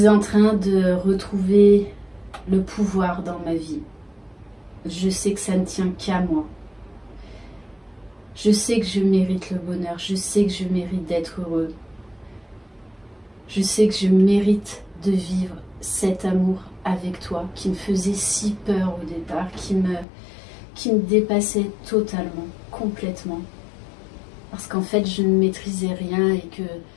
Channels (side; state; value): right; drops out; at 20.1 s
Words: en train de retrouver le pouvoir dans ma vie. Je sais que ça ne tient qu'à moi. Je sais que je mérite le bonheur. Je sais que je mérite d'être heureux. Je sais que je mérite de vivre cet amour avec toi qui me faisait si peur au départ, qui me dépassait totalement, complètement. Parce qu'en fait, je ne maîtrisais rien et